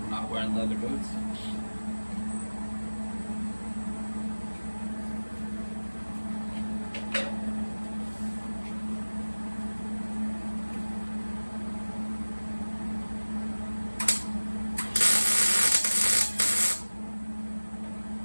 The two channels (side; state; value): both; inverted; correlation -1.00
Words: from not wearing leather boots.